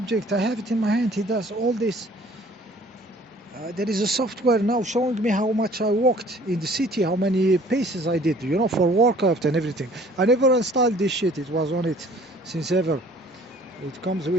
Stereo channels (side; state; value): both; normal; correlation 0.54